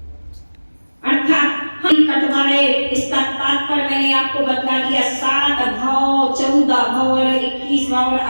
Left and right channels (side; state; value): both; inverted; correlation -1.00